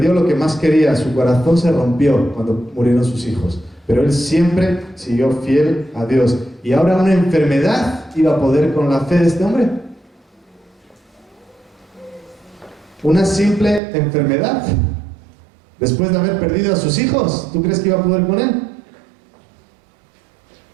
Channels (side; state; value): left; drops out; at 13.8 s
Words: lo que más quería, su corazón se rompió cuando murieron sus hijos. Pero él siempre siguió fiel a Dios. Y ahora una enfermedad iba a poder con la fe de este hombre. Una simple enfermedad. Después de haber perdido a sus hijos, ¿tú crees que iba a poder con él?